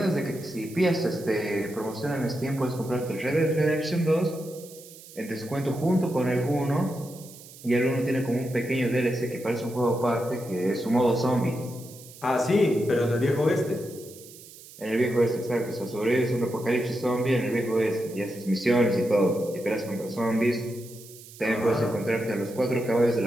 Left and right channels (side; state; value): right; noise; hiss, 19 dB below the sound